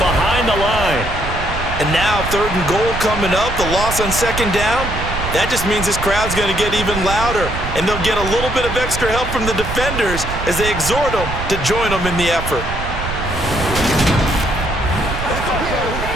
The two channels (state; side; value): noise; right; rumble, 7 dB below the sound